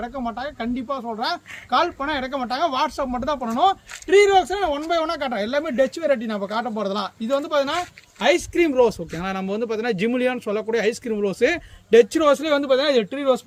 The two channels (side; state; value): both; identical; correlation 1.00